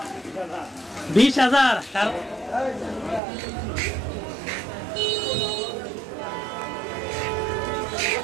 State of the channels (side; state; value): left; drops out; at 3.2 s